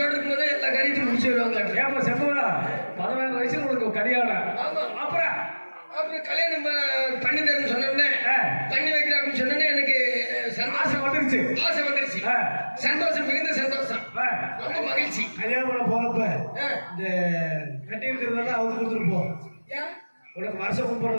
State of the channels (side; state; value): both; inverted; correlation -1.00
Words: இருக்கும்போதே எல்லா காரியத்தையும் முடிச்சு வருவாங்க. ஏப்பா செப்பா 16 வயசுல உனக்கு கல்யாணம். ஆமா. அப்புறம் கல்யாணம் பண்ணி தரேன்னு சொன்னோடனே பண்ணி வைக்கிறேன் அப்படின்னு சொன்னோடனே எனக்கு ஆசை வந்துருச்சு. சந்தோஷம், மிகுந்த சந்தோஷம், ரொம்ப மகிழ்ச்சி. கல்யாணம் பண்ண போறப்ப இந்த கட்டி இருக்கிறதெல்லாம் அவங்க கொடுத்துட்டு போ. உனக்கு வருஷம்